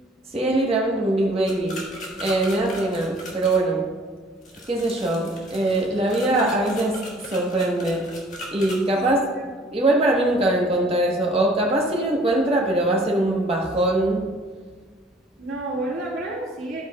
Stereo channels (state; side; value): normal; both; correlation 0.54